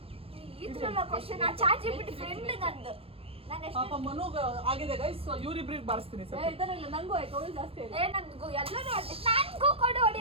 ಇದ್ರಲ್ಲ ಕ್ವಶನ್. ಆ ಚಾರ್ಜ್ ಬಿಟ್ಟು ಫ್ರೆಂಡ್ ನಂದು. ನಾನು ಎಷ್ಟು ಪಾಪ ಮನುಗ ಆಗಿದೆ ಗೈಸ್. ಇವ್ರಿಬ್ರಿಗೆ ಬಾರಿಸ್ತೀನಿ ಸರ್. ನಂಗೂ ಆಯ್ತು. ಅವಳು ಜಾಸ್ತಿ ನಂಗೂ ಎಲ್ಲರೂ ನಂಗೂ ಕೊಡು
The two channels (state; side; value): late; left; 0.27 ms